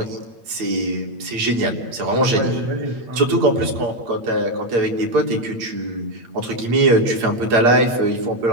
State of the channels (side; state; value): left; late; 8.6 ms